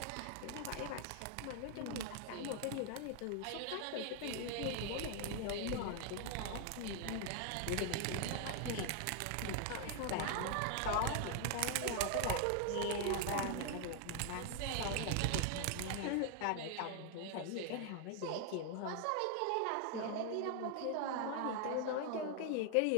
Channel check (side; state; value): both; different; correlation 0.00